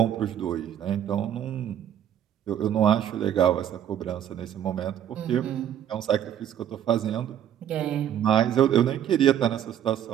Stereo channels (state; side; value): quieter; left; 10.2 dB